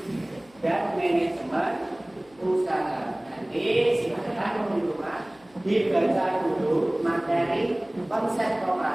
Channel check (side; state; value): left; noise; hum, 30 dB below the sound